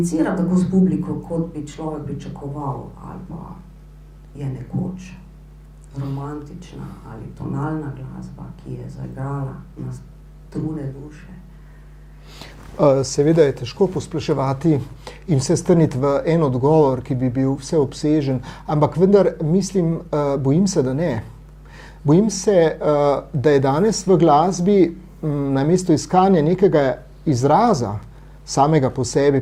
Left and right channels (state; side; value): identical; both; correlation 1.00